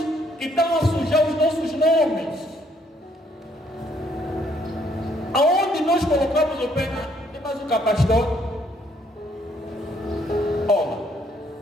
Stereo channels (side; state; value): both; normal; correlation 0.67